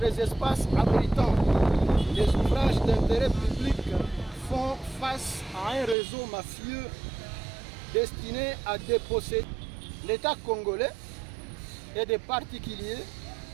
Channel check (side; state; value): left; drops out; at 6.0 s